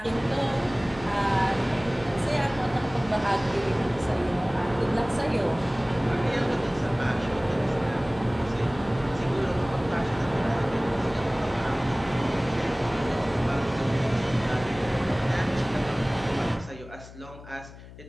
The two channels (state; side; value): noise; left; hum, 17 dB below the sound